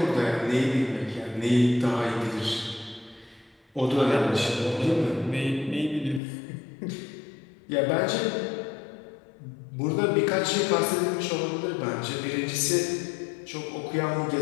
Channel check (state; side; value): drops out; right; at 6.2 s